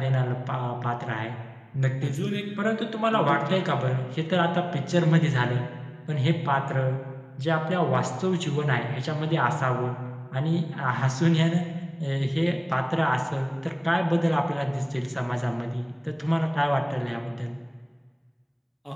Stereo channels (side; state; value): both; identical; correlation 1.00